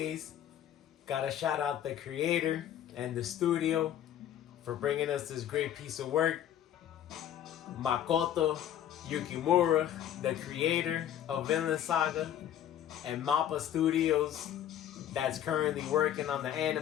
gotta shout out the creator and the studio for bringing us this great piece of work. Makoto Yukimura, the creator of Vinland Saga, and Mappa Studios, that's currently working on the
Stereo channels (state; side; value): quieter; right; 10.8 dB